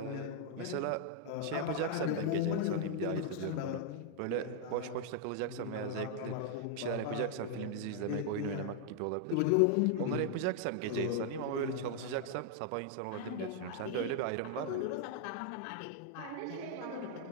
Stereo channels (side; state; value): both; different; correlation 0.00